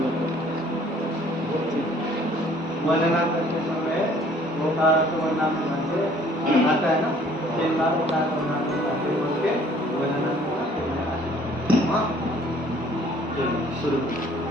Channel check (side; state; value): both; normal; correlation 0.57